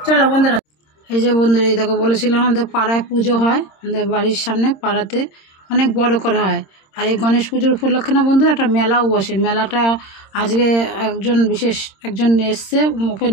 চলো বন্ধুরা, এই যে বন্ধুরা এই দেখো বলেছিলাম আমাদের পাড়ায় পুজো হয়, আমাদের বাড়ির সামনে পাড়াতে অনেক বড় করে হয়। আর এই গণেশ পুজোর উপলক্ষে না বন্ধুরা একটা মেলাও বসে। মেলাটা আজকে বিশেষ একজন এসছে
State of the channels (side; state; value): right; late; 26 ms